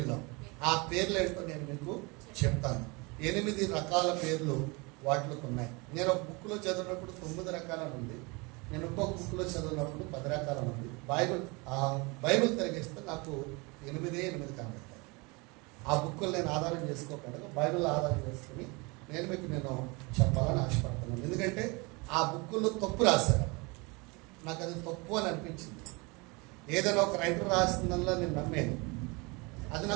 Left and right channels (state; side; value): quieter; left; 27.5 dB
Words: ఆ పేర్లు ఏంటో నేను మీకు చెప్తాను. 8 రకాల పేర్లు వాటికి ఉన్నాయి. నేను ఒక బుక్లో చదివినప్పుడు 9 రకాలని ఉంది, నేను ఇంకొక బుక్లో చదివినప్పుడు 10 రకాలని ఉంది. బైబిల్ తిరిగిస్తే నాకు 8 కనబడతాయి. ఆ బుక్కులు నేను ఆధారం చేసుకోకుండా బైబిల్ ఆధారం చేసుకుని నేను చెప్పాలని ఆశపడుతున్నాను. ఎందుకంటే ఆ బుక్కుల్లో తప్పు రాశారు, నాకు అది తప్పు అని అనిపించింది. ఏదైనా ఒక రైటర్ రాసిందల్లా నేను నమ్మాను, అది